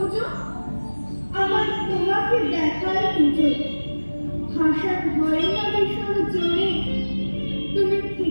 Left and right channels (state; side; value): inverted; both; correlation -1.00